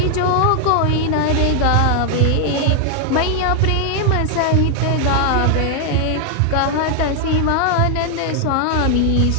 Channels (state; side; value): different; both; correlation 0.00